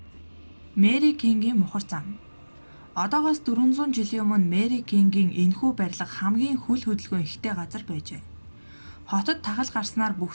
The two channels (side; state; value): both; inverted; correlation -1.00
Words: Мэри Кингийн мухар зам. Одоогоос 400 жилийн өмнө Мэри Кингийн энэхүү барилга хамгийн хүл хөдөлгөөн ихтэй газар байжээ. Хотод тахал гарснаар бүх